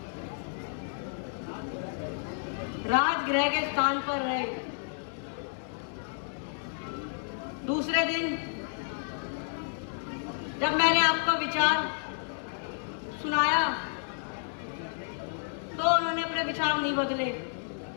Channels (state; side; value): silent; right; digital silence